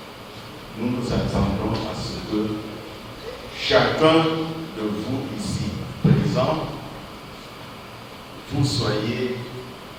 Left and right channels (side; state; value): both; identical; correlation 1.00